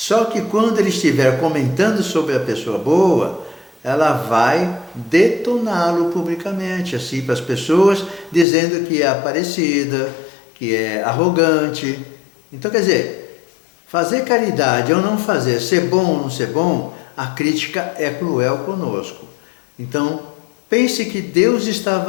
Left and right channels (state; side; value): drops out; right; at 8.5 s